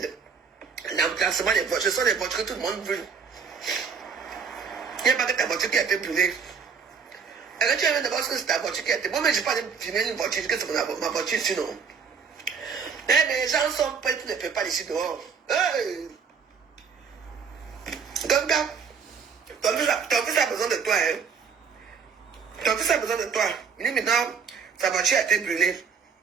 l'emplacement des voitures, ce sont des voitures que tout le monde veut. Il n'y a pas que ta voiture qui a été brûlée. Alors tu as d'abord que c'est ta voiture qui a été. Moi, mais je ne vais pas filmer une voiture, que c'est ma voiture sinon. Eh, mais les gens sont prêts pour ne payer pas ici dehors. Hey. Donc, ton fils a besoin de toi. Hein. Ton fils a besoin de toi. Il dit maintenant, sa voiture a été brûlée.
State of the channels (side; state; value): left; quieter; 6.2 dB